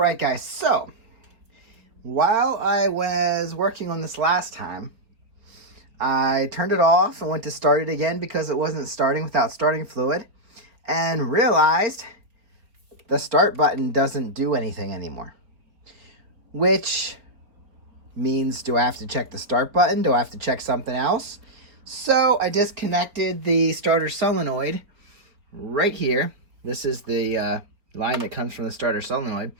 guys. So, while I was working on this last time, I turned it off and went to start it again because it wasn't starting without starting fluid, and realized the start button doesn't do anything anymore. Which means, do I have to check the start button? Do I have to check something else? So I disconnected the starter solenoid right here. This is the line that comes from the starter solenoid.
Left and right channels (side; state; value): left; late; 4.1 ms